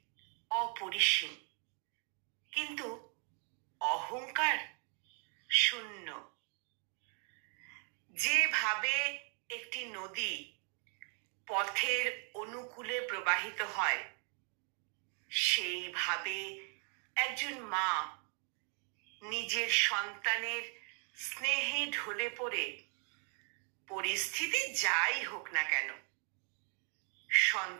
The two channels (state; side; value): quieter; left; 39.9 dB